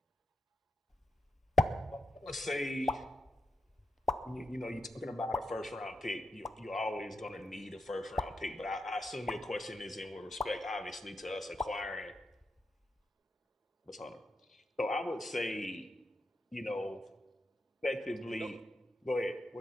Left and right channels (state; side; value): normal; both; correlation 0.85